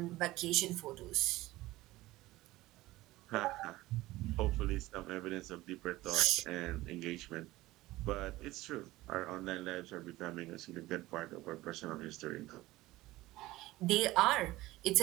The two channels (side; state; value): left; quieter; 18.1 dB